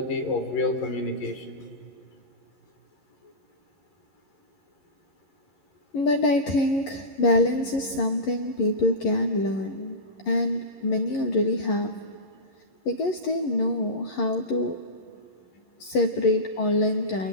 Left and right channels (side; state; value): right; late; 11 ms